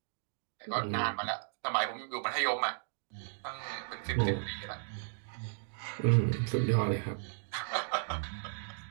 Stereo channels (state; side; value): silent; left; digital silence